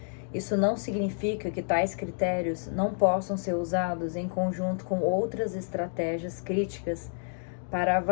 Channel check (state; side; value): silent; right; digital silence